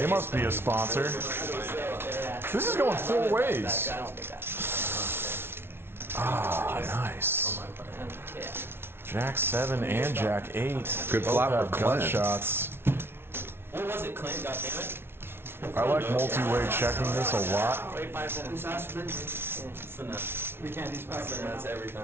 must be a sponsor. This is going 4 ways. Ah, nice. Jack 7 and Jack 8. Good Both flop have for gut Clint. shots. What was it, Clint? Goddammit. I like multi-way checking this a lot. That's every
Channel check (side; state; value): left; late; 0.12 ms